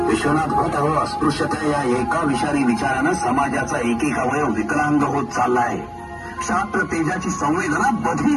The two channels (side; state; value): both; identical; correlation 1.00